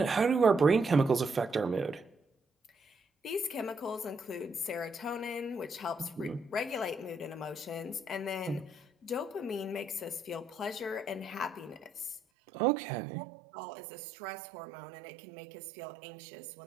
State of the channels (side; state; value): left; drops out; at 12.2 s